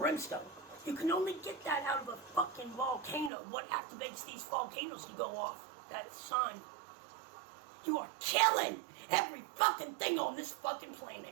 You can only get that out of a fucking volcano. What activates these volcanoes to go off? That sun. You are killing every fucking thing on this fucking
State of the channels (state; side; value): drops out; left; at 3.3 s